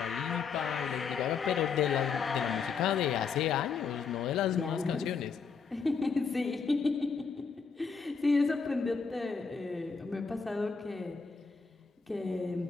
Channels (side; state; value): right; quieter; 5.4 dB